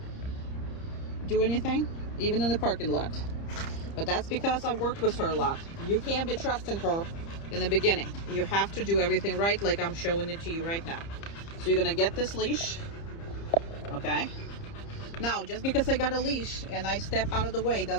do anything, even in the parking lot. But that's because I've worked with her a lot. You can't be trusting her in the beginning. You have to do everything right, like I'm showing it to you right now. So you're gonna get this leash, okay? Now, just because I got a leash and I step out of the way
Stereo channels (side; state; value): right; late; 30 ms